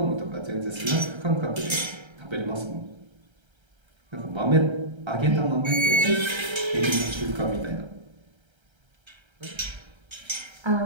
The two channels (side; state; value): left; late; 1.3 ms